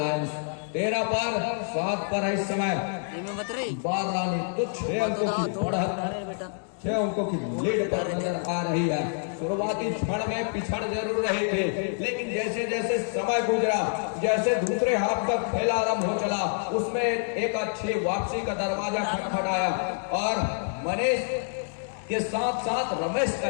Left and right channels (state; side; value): silent; right; digital silence